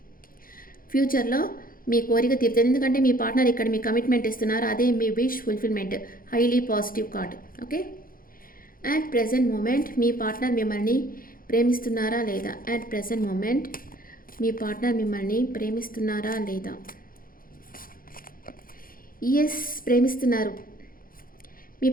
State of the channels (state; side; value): late; right; 0.41 ms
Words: ఫ్యూచర్లో మీ కోరిక తీరుతుంది. ఎందుకంటే మీ పార్ట్నర్ ఇక్కడ మీ కమిట్మెంట్ ఇస్తున్నారు. అదే మీ wish fulfilment. Highly positive card. Okay, at present moment మీ పార్ట్నర్ మిమ్మల్ని ప్రేమిస్తున్నారా లేదా. అట్ ప్రెజెంట్ మూమెంట్ మీ పార్ట్నర్ మిమ్మల్ని ప్రేమిస్తున్నారా లేదా. ఎస్, ప్రేమిస్తున్నారు. మీ